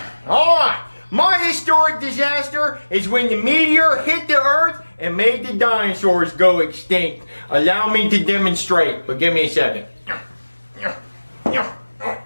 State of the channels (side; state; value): both; inverted; correlation -1.00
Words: All right, my historic disaster is when the meteor hit the Earth and made the dinosaurs go extinct. Allow me to demonstrate, but give me a second.